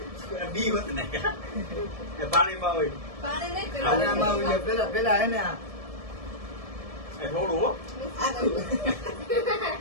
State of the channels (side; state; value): left; late; 1.7 ms